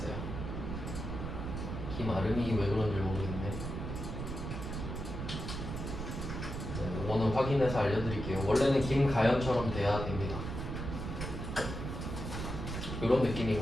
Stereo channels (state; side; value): noise; right; rumble, 5 dB below the sound